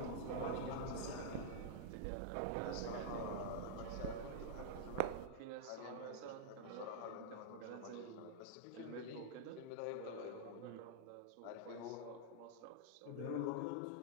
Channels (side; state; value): both; different; correlation -0.02